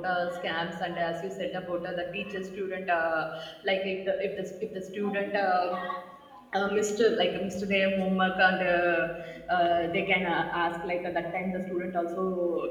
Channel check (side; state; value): both; identical; correlation 1.00